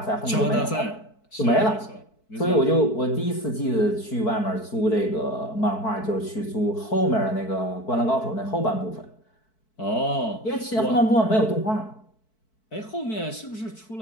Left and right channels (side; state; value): right; late; 4.6 ms